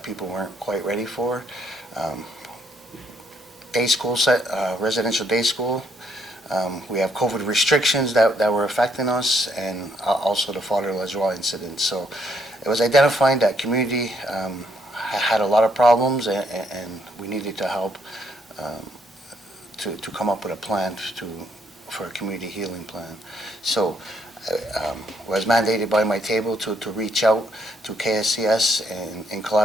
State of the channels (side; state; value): both; normal; correlation 0.72